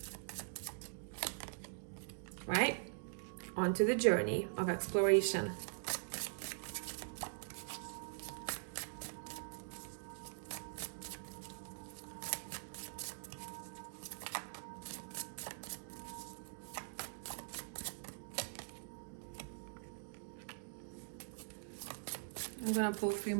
Right? Onto the journey of exploration. I'm gonna pull 3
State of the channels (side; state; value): left; silent; digital silence